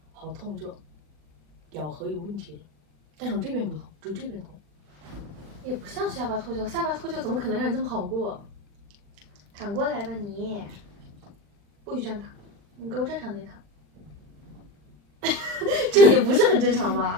好痛，就咬合有问题了。但是我这边不痛，只有这边痛。也不像下巴脱臼，下巴脱臼怎么可能让你这么好过？躺过来吧你，不许这样躺，你给我正常点躺。这也不是很正常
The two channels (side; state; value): left; late; 40 ms